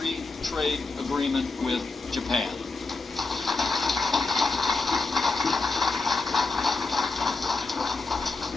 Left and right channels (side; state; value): right; quieter; 3.8 dB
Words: trade agreement with Japan.